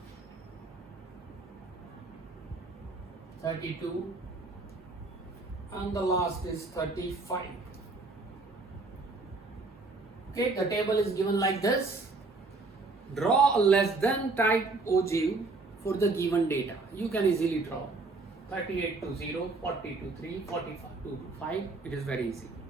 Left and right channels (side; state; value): left; quieter; 3.6 dB